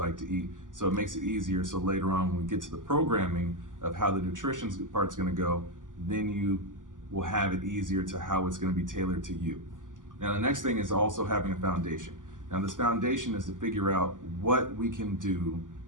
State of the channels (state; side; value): late; left; 0.88 ms